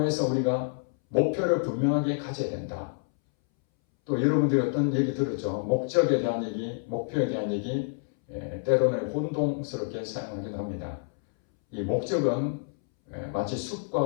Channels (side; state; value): right; silent; 59 dB below the other